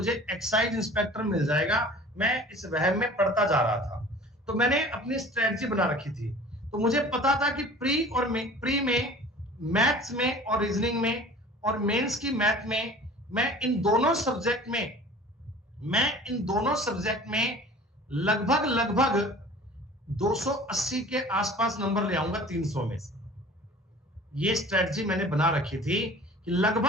एक्साइज इंस्पेक्टर मिल जाएगा। मैं इस वहम में पढ़ता जा रहा था, तो मैंने अपनी स्ट्रेटजी बना रखी थी। तो मुझे पता था कि प्री में मैथ्स में और रीजनिंग में और मेंस की मैथ में मैं इन दोनों सब्जेक्ट में लगभग 280 के आसपास नंबर ले आऊंगा 300 में से। ये स्ट्रेटजी मैंने बना रखी थी कि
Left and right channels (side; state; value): both; normal; correlation 0.44